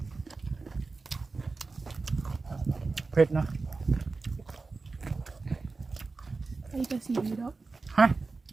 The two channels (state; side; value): quieter; left; 3.9 dB